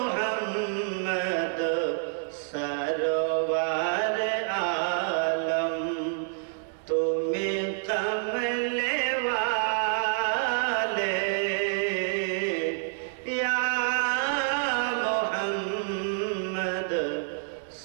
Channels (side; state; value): left; silent; 59 dB below the other